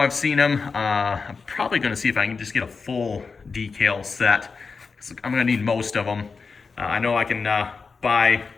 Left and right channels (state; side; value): quieter; right; 4.8 dB